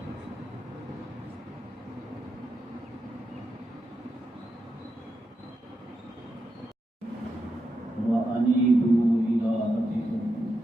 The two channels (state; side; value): normal; both; correlation 0.86